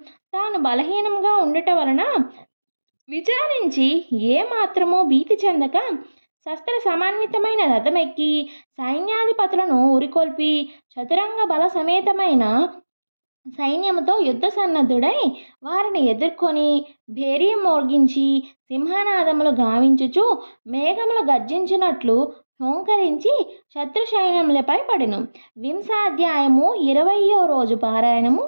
తాను బలహీనంగా ఉండుట వలన విచారించి ఏమాత్రమూ భీతి చెందక శస్త్ర సమన్వితమైన రథమెక్కి సైన్యాధిపతులను ఉరికొల్పి చతురంగ బల సమేతమైన సైన్యముతో యుద్ధ సన్నద్ధుడై వారిని ఎదుర్కొని భేరీ మోగించి సింహనాదములు గావించుచు మేఘములు గర్జించినట్లు హోంకరించి శత్రు సైన్యములపై పడెను. 20వ అధ్యాయము 20వ రోజు పారాయణము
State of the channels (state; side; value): inverted; both; correlation -1.00